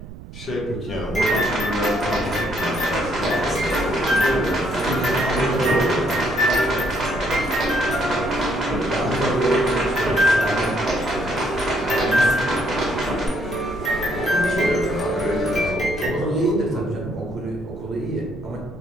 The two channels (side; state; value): right; noise; rumble, 15 dB below the sound